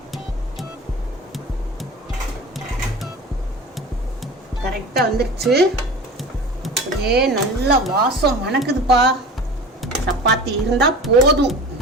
கரெக்டாக வந்துருச்சு. அப்படியே நல்லா வாசம் மணக்குதுப்பா. சப்பாத்தி இருந்தால் போதும்.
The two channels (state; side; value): normal; both; correlation 0.36